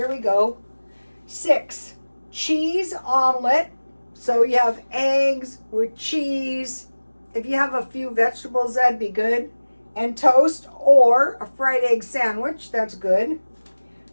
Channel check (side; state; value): both; inverted; correlation -1.00